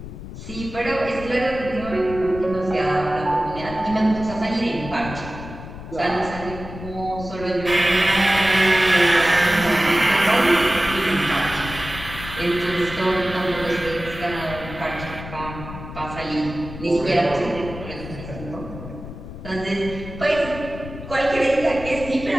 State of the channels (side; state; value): left; noise; rumble, 11 dB below the sound